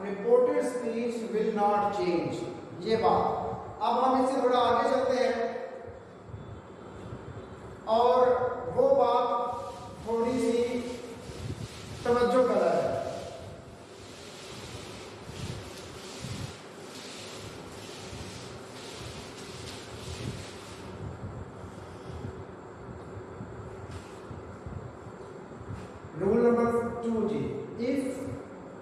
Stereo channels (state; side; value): identical; both; correlation 1.00